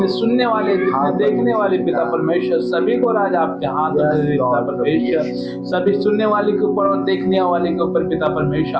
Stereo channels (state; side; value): identical; both; correlation 1.00